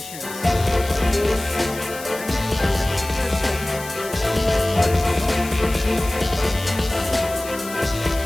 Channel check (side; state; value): left; noise; hiss, 13 dB below the sound